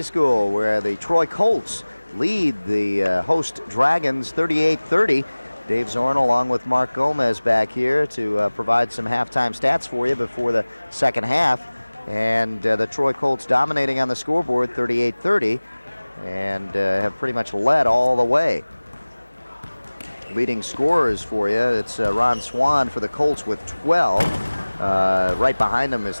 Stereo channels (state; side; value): inverted; both; correlation -1.00